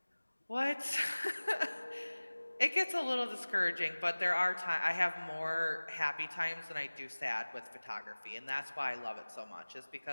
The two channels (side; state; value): both; inverted; correlation -1.00